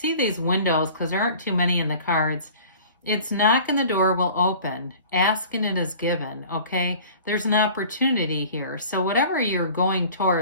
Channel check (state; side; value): inverted; both; correlation -0.45